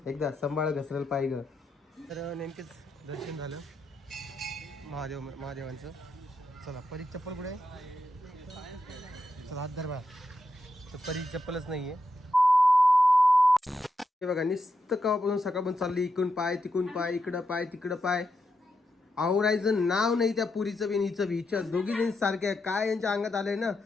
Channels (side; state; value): both; normal; correlation 0.85